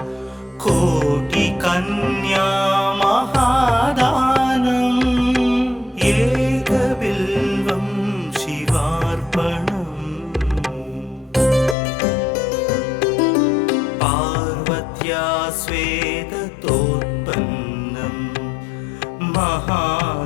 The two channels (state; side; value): drops out; right; at 11.8 s